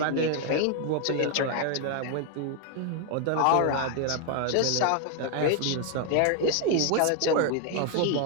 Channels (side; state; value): both; different; correlation 0.00